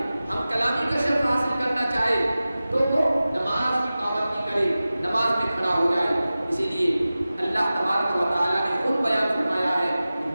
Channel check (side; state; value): both; inverted; correlation -0.96